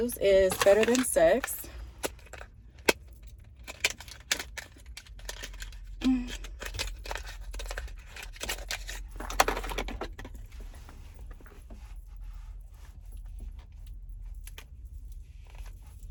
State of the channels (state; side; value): identical; both; correlation 1.00